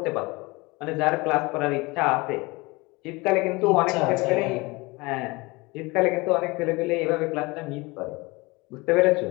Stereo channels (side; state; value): right; quieter; 24.3 dB